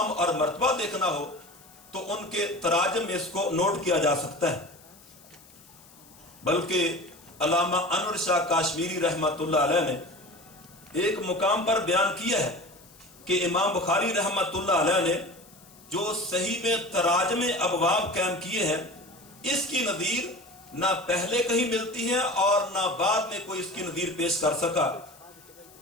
اور مرتبہ دیکھنا ہو، تو ان کے تراجم میں اس کو نوٹ کیا جا سکتا ہے۔ بلکہ علامہ انور شاہ کاشمیری رحمت اللہ علیہ نے ایک مقام پر بیان کیا ہے کہ امام بخاری رحمت اللہ علیہ نے جو صحیح میں تراجم ابواب قائم کیے ہیں، اس کی نظیر نہ پہلے کہیں ملتی ہے اور نہ بعد میں کوئی اس کی نظیر پیش کر سکا۔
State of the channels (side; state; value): left; noise; hiss, 24 dB below the sound